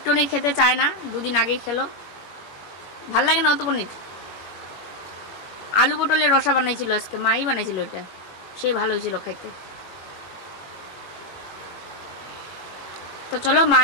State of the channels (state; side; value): late; right; 21 ms